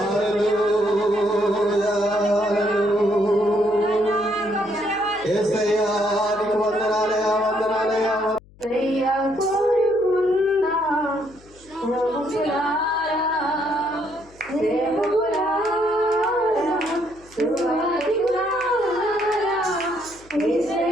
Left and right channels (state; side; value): noise; left; hum, 26 dB below the sound